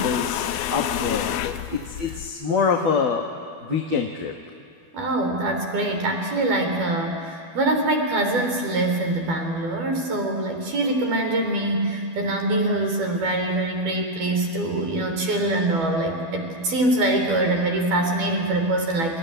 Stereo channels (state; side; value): late; left; 12 ms